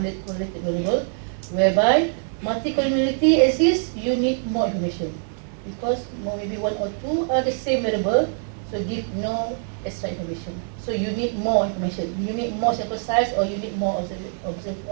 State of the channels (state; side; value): silent; left; digital silence